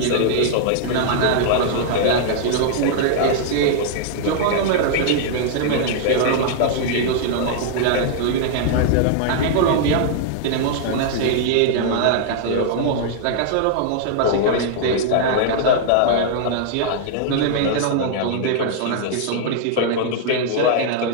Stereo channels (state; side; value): different; both; correlation -0.01